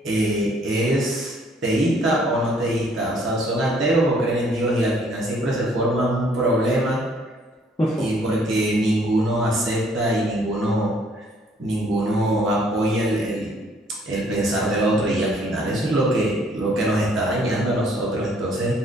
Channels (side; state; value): both; normal; correlation 0.63